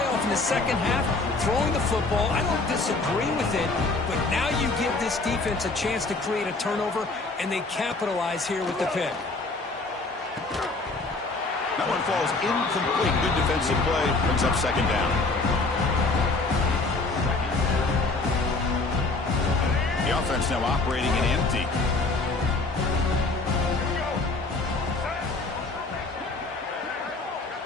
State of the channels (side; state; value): right; quieter; 3.5 dB